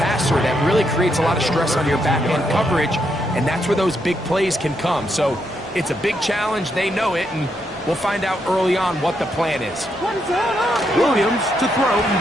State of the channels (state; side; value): normal; both; correlation 0.79